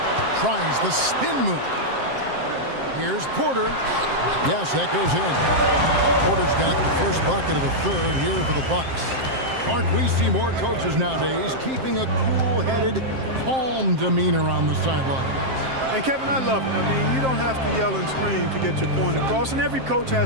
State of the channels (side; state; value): left; late; 7.6 ms